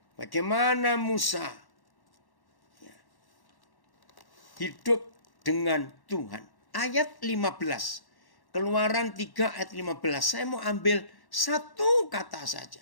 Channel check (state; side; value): late; right; 1.1 ms